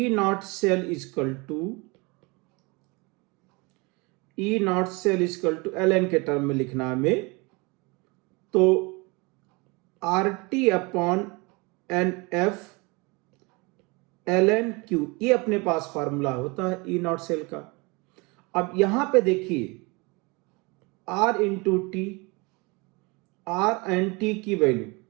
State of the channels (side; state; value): left; quieter; 27.3 dB